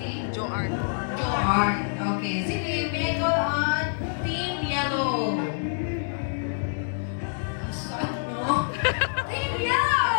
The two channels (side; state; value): right; silent; digital silence